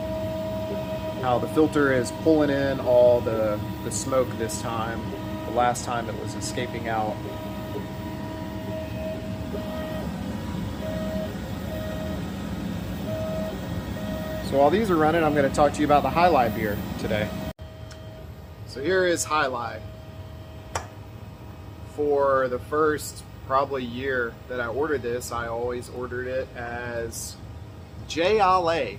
how the filter is pulling in all the smoke this time. The last time it was escaping out. So while these are running, I'm going to talk to you about the Hi-Lai beer today. So here is Hi-Lai. For the first probably year that I ordered this, I always ordered it as Jai Alai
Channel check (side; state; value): both; identical; correlation 1.00